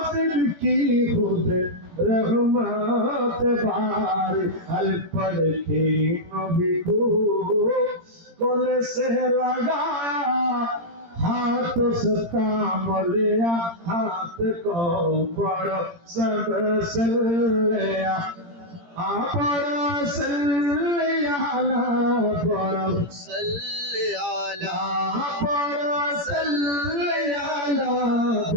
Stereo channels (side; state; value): left; late; 17 ms